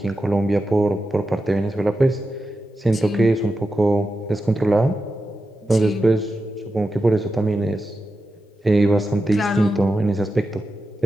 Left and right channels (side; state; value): both; normal; correlation 0.90